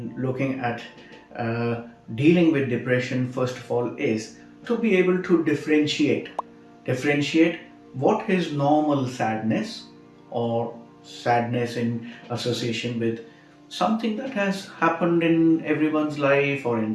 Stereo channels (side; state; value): both; identical; correlation 1.00